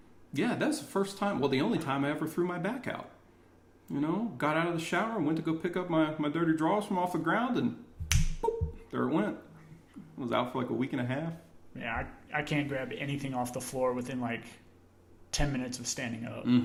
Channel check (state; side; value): identical; both; correlation 1.00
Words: Yeah, that's the first time, the only time I ever threw my back out. Got out of the shower and went to go pick up my dirty drawers from off the ground, and boop, there it went. I was out for like a week and a half. Yeah, I can't grab anything off the floor within like 10 minutes of standing up.